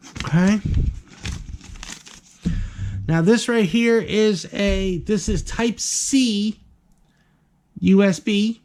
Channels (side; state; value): both; identical; correlation 1.00